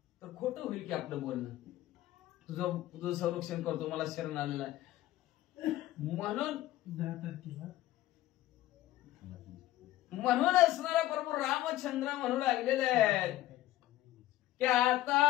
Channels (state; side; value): quieter; right; 15.0 dB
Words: तर खोटं होईल की आपलं बोलणं. तुझं संरक्षण करतो मला शरण आलेला आहे म्हणून असणारा प्रभू रामचंद्र म्हणू लागलेले आहेत की